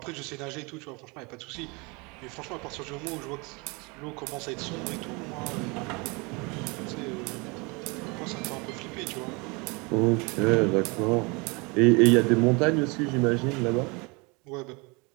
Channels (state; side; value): quieter; left; 28.3 dB